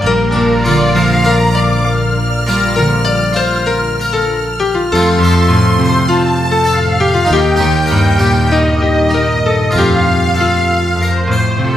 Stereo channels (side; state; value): both; normal; correlation 0.85